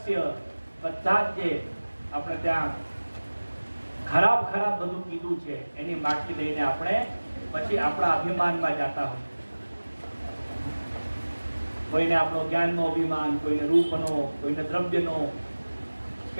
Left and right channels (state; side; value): inverted; both; correlation -1.00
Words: બધા જ જે આપણે ત્યાં ખરાબ બધું કીધું છે એની માટી લઈને આપણે પછી આપણા અભિમાનમાં જતા હોય. કોઈને આપણો જ્ઞાનનો અભિમાન, કોઈને રૂપનો, કોઈને દ્રવ્યનો,